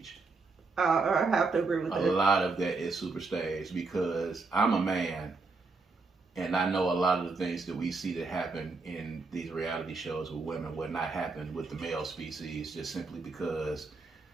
I have to agree with that. A lot of that is super staged because I'm a man. And I know a lot of the things that we see that happen in these reality shows with women would not happen with the male species, just simply because,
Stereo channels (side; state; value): left; quieter; 3.9 dB